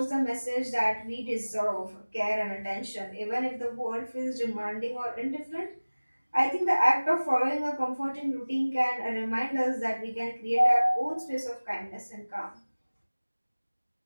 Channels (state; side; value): inverted; both; correlation -1.00